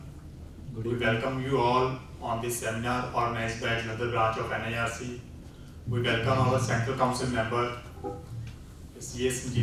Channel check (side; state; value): both; identical; correlation 1.00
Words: Good We evening. welcome you all on this seminar organized by another branch of NIRC. We welcome our Central Council member, CA